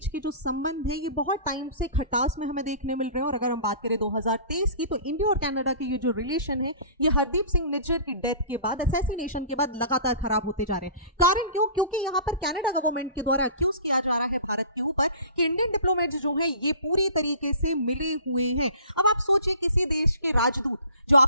के जो संबंध है ये बहुत टाइम से खटास में हमें देखने मिल रहे हैं। और अगर हम बात करें 2023 की, तो इंडिया और कनाडा के ये जो रिलेशन है ये हरदीप सिंह निज्जर की डेथ के बाद, असैसिनेशन के बाद लगातार खराब होते जा रहे हैं। कारण क्यों? क्योंकि यहाँ पर कनाडा गवर्नमेंट के द्वारा एक्यूज किया जा रहा है भारत के ऊपर कि इंडियन डिप्लोमेट्स जो हैं ये पूरी तरीके से मिले हुए हैं। अब आप सोचिए, किसी देश के राजदूत जो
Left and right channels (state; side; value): inverted; both; correlation -0.43